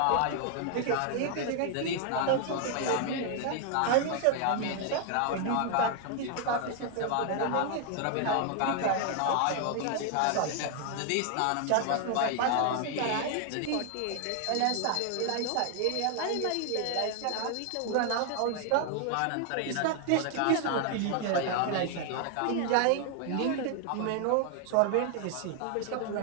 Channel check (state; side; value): different; both; correlation 0.00